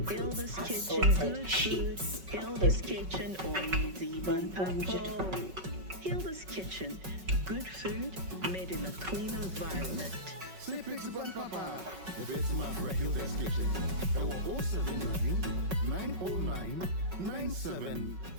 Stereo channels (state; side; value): late; left; 5.3 ms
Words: Hilda's Kitchen, assorted good food. sheets. Hilda's Kitchen, oye deep on papo. Hilda's Kitchen, good food made in a clean environment. Say Pixie Bun Papa, the best man for Hilda's Kitchen. Our 079 909